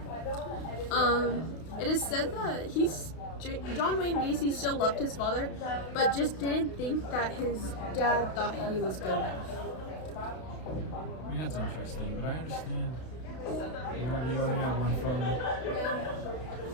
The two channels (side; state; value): right; late; 32 ms